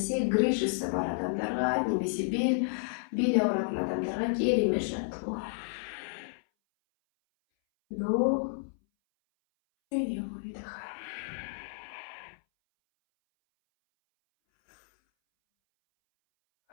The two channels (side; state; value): right; silent; 57 dB below the other